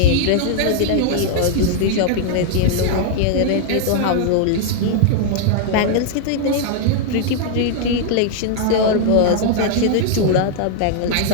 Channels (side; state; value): both; different; correlation 0.00